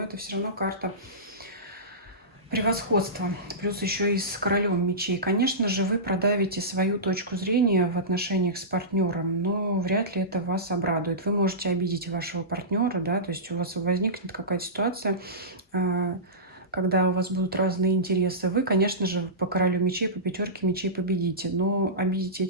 все равно карта превосходство, плюс еще и с королем мечей. Конечно же, вы продавите свою точку зрения в отношениях с партнером, но вряд ли это вас обрадует. Вы можете обидеть вашего партнера, да, то есть у вас возникнет какая-то ситуация, когда у вас будут разные интересы. Вы, конечно же, по королю мечей, по пятерке мечей победите, но обидите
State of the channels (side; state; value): both; normal; correlation -0.19